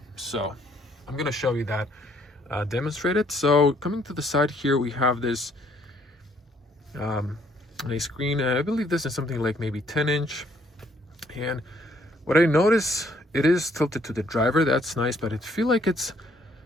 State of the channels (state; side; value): normal; both; correlation 0.66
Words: So I'm gonna show you that demonstrated. So coming to the side here, we have this a screen. I believe this is something like maybe 10-inch. And what I notice, it is tilted to the driver. That's nice, but I feel like it's